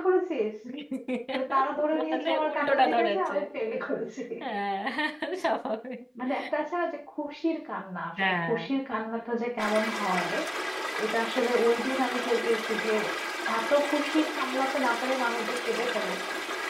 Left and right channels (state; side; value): identical; both; correlation 1.00